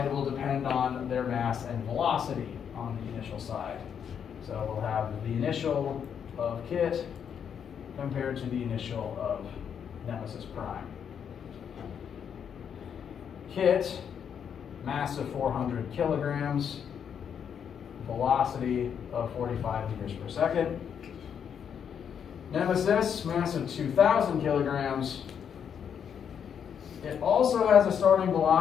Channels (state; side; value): quieter; right; 7.9 dB